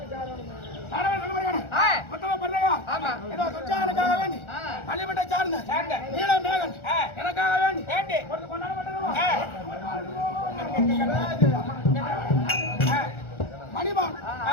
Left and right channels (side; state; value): right; late; 1.4 ms